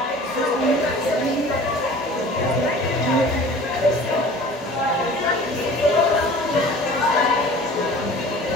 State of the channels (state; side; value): normal; both; correlation 0.44